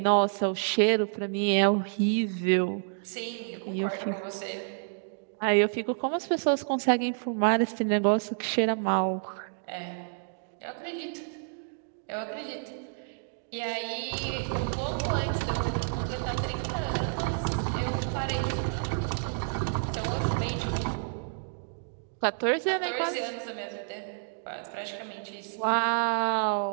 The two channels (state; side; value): silent; left; digital silence